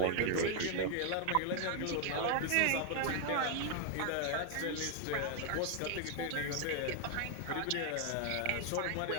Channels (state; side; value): different; both; correlation 0.00